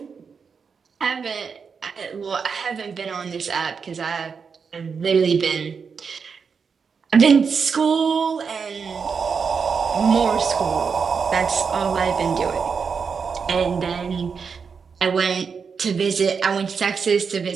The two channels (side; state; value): left; quieter; 5.8 dB